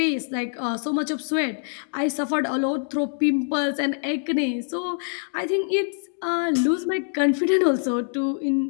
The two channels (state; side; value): silent; right; 62 dB below the other